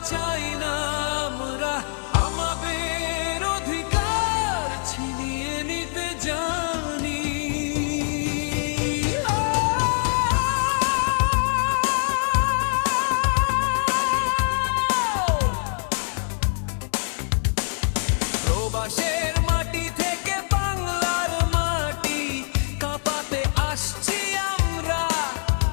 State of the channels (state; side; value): silent; right; 57 dB below the other